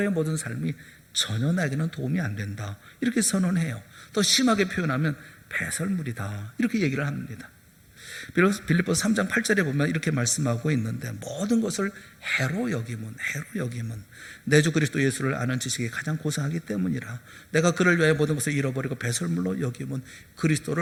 모든 삶이 전혀 나에게는 도움이 안 된다, 이렇게 선언해요. 더 심하게 표현하면 배설물이다, 이렇게 얘기를 합니다. 빌립보서 3장 8절에 보면 이렇게 말씀하고 있는데, 모든 것을 해로 여김은 내 주 그리스도 예수를 아는 지식이 가장 고상하기 때문이라. 내가 그를 위하여 모든 것을 잃어버리고 배설물로 여김은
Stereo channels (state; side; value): identical; both; correlation 1.00